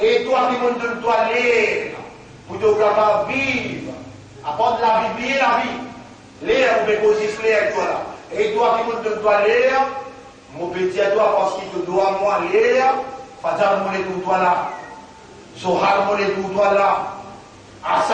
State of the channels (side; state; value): both; identical; correlation 1.00